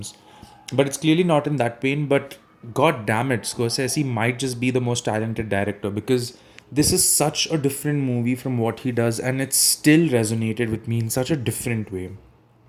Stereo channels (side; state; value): both; identical; correlation 1.00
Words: But it's clearly not in that vein. But god damn it, Scorsese might just be the most talented director because this is such a different movie from what he does, and it still resonated with me in such a different way.